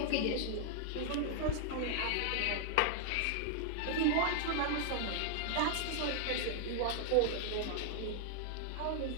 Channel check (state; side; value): different; both; correlation 0.00